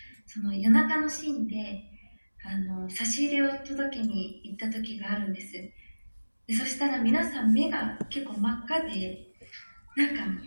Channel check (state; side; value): inverted; both; correlation -1.00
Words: その夜中のシーンで差し入れを届けに行った時があるんです。でそしたら皆さん目が結構真っ赤で、なんか